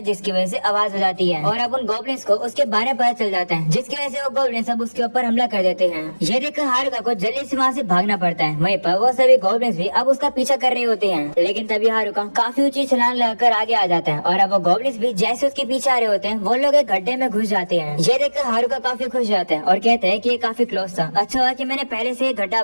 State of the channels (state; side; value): inverted; both; correlation -1.00